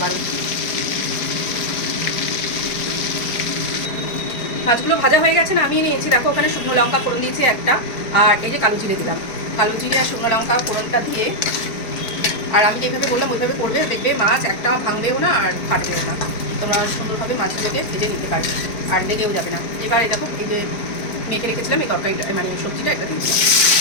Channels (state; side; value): late; right; 4.5 ms